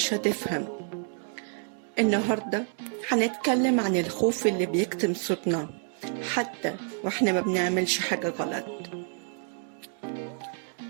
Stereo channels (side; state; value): left; silent; 59 dB below the other